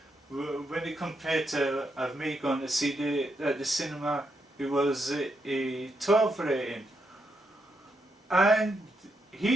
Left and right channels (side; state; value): both; normal; correlation 0.81